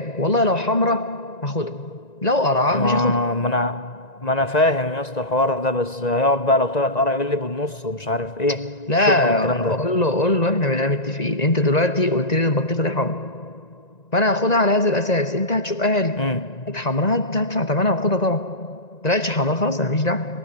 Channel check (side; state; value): right; late; 1.9 ms